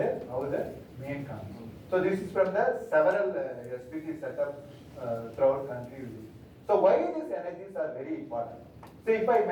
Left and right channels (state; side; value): identical; both; correlation 1.00